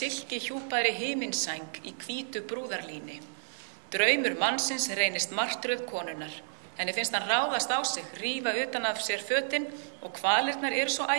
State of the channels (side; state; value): left; silent; digital silence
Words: hjúpaðri himinsæng í hvítu brúðarlíni. Draumur mannsins reynist martröð konunnar. Henni finnst hann ráðast á sig, rífa utan af sér fötin og kvalirnar eru svo